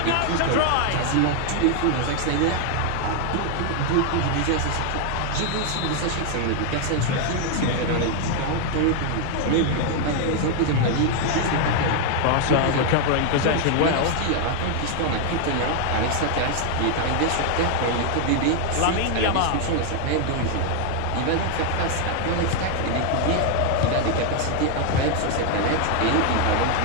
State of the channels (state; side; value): different; both; correlation 0.00